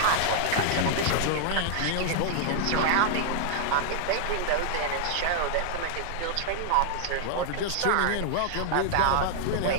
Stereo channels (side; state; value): both; different; correlation -0.01